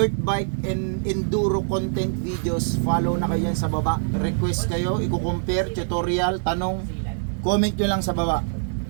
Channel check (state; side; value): silent; left; digital silence